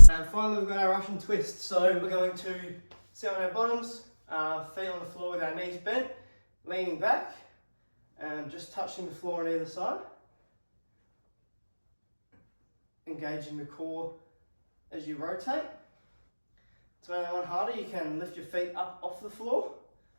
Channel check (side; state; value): both; inverted; correlation -1.00